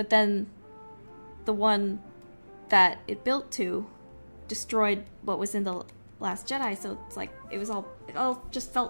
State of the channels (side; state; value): both; inverted; correlation -1.00